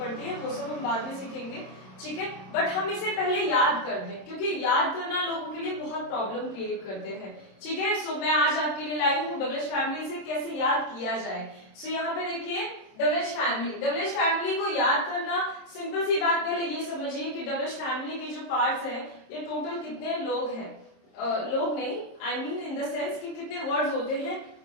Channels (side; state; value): right; late; 26 ms